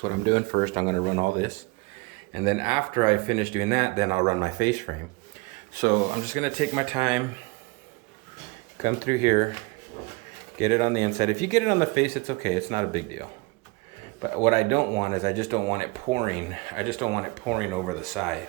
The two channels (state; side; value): quieter; left; 25.9 dB